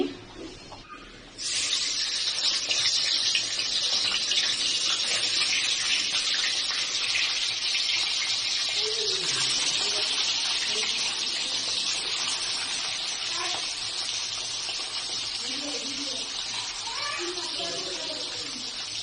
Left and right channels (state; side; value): identical; both; correlation 1.00